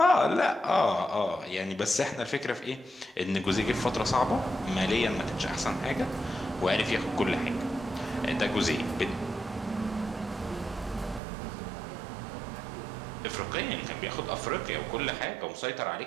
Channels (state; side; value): drops out; left; at 11.2 s